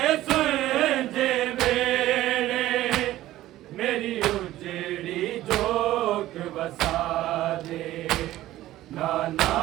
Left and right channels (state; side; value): quieter; left; 15.0 dB